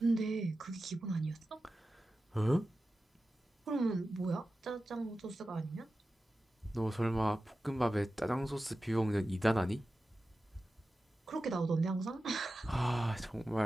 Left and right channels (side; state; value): both; normal; correlation 0.94